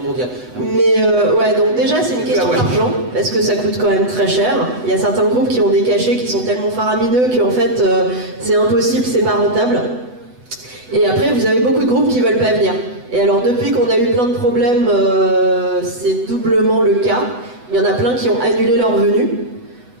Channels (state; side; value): late; left; 8.0 ms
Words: mondiale. Mais ouais, donc déjà c'est une question d'argent, parce que ça coûte quand même très cher. Il y a certains groupes qui ont des cachets qui sont tellement faramineux qu'en fait c'est impossible, c'est pas rentable. Et après vous avez beaucoup de groupes qui veulent pas venir. Et alors depuis qu'on a eu plein de problèmes, c'est doublement le cas. Il y en a plein qui ont annulé leur venue.